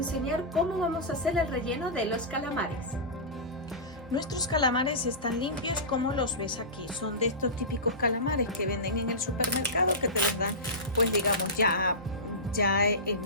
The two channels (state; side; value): normal; both; correlation -0.19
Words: cómo vamos a hacer el relleno de los calamares. Nuestros calamares están limpios como los ves aquí. Son de estos típicos calamares que venden en el supermercado, que te los dan, pues digamos, ya